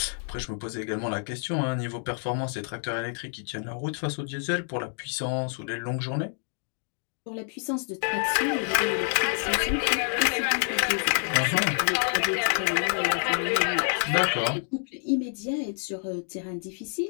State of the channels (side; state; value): right; silent; 56 dB below the other